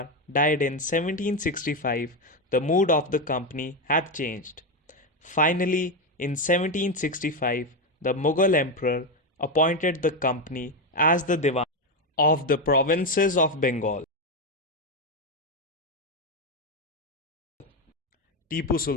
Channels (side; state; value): both; normal; correlation 0.10